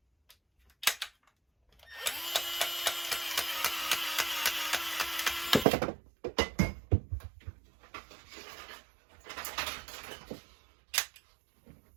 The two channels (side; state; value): left; drops out; at 5.7 s